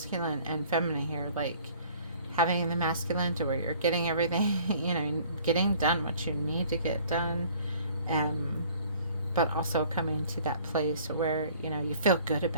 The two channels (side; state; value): both; inverted; correlation -0.53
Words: and feminine here, like having the masculine to where you're getting everything, getting done what you need to get done, um, but also coming to that place where, you feel good